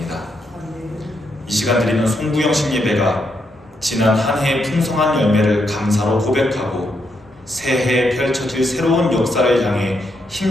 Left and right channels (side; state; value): both; normal; correlation 0.80